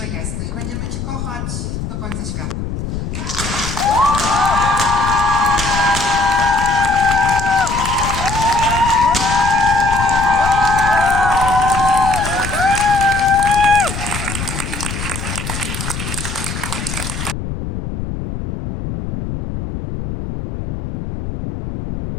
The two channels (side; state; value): left; noise; rumble, 6 dB below the sound